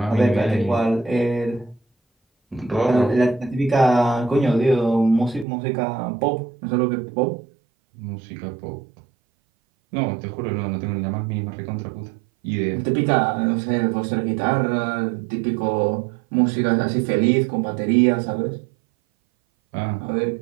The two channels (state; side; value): drops out; left; at 5.5 s